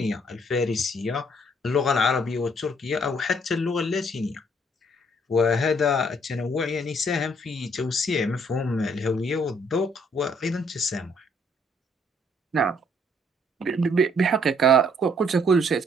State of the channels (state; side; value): normal; both; correlation 0.65